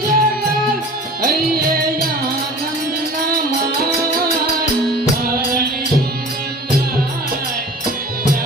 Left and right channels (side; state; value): both; normal; correlation 0.42